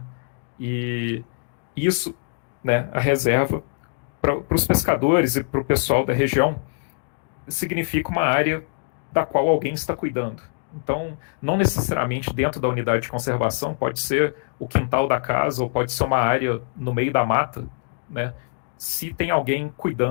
E isso, né, a reserva, para os pescadores e para o pessoal da região, significa uma área da qual alguém está cuidando. Então, não necessariamente dentro da unidade de conservação, pode ser o quintal da casa, ou pode ser uma área no meio da mata, né? Se tem alguém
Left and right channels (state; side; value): silent; right; digital silence